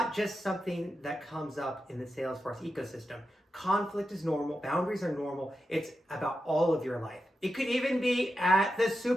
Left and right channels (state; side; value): normal; both; correlation 0.89